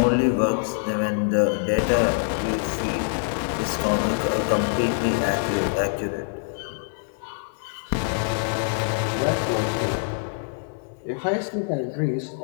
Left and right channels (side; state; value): right; silent; 59 dB below the other